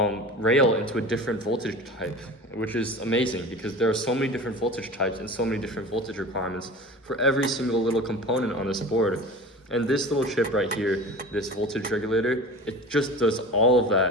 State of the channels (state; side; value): normal; both; correlation 0.35